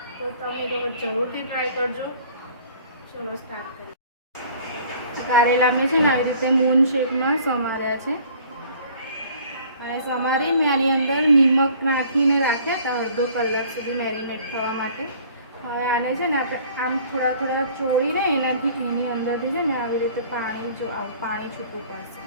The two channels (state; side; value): inverted; both; correlation -0.52